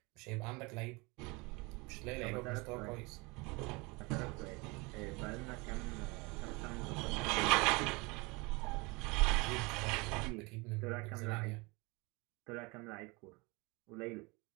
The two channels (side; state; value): left; quieter; 26.5 dB